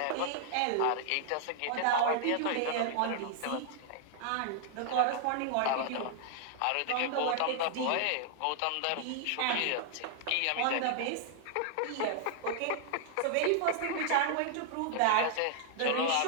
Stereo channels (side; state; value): both; different; correlation -0.01